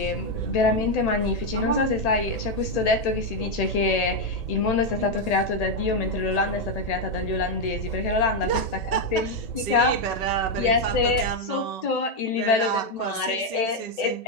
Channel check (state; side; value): late; right; 1.8 ms